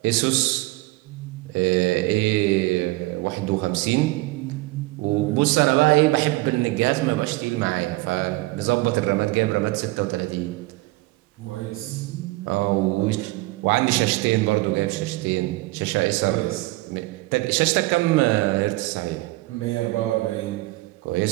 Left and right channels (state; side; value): quieter; left; 20.6 dB